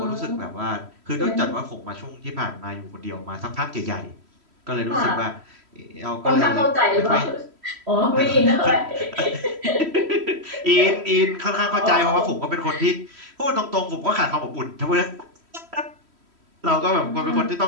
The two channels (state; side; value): late; left; 3.1 ms